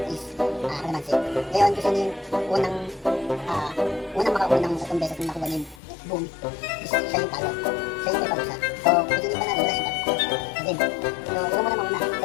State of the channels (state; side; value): drops out; right; at 5.8 s